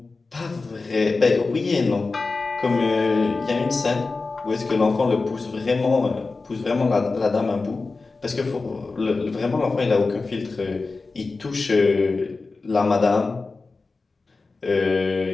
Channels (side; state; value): right; quieter; 3.9 dB